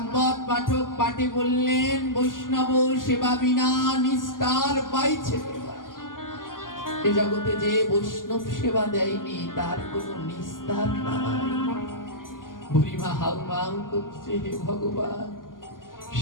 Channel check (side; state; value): right; late; 0.90 ms